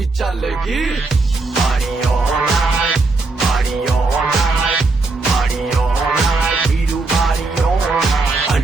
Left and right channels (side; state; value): left; quieter; 3.6 dB